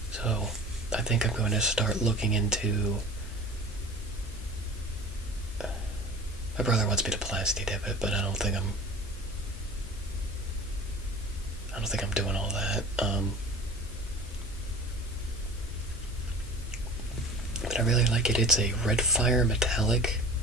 So I think I'm going to start looking into. My brother wants me to plasti dip it, but I don't think I'm doing all that. But I really like it. It's a red fire metallic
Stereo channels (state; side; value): normal; both; correlation 0.40